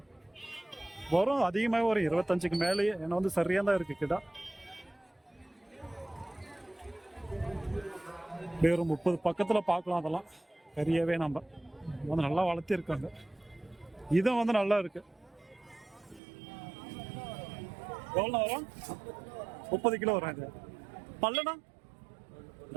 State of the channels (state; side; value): drops out; left; at 16.2 s